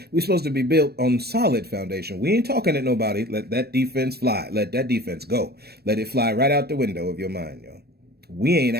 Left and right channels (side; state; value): left; late; 0.47 ms